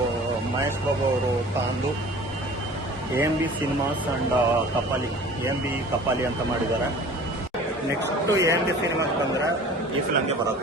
ಮಹೇಶ್ ಬಾಬು ಅವರು ತಂದು AMB cinemas and Kapali AMB Kapali ಅಂತ ಮಾಡಿದ್ದಾರೆ. ನೆಕ್ಸ್ಟು AMB ಸಿನಿಮಾಸ್ ಬಂದರೆ ಈ ಫಿಲಮ್ಗೆ ಬರೋದು.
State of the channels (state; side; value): normal; both; correlation 0.44